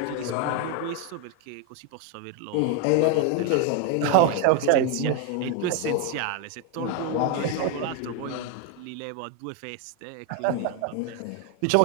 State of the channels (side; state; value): both; different; correlation 0.01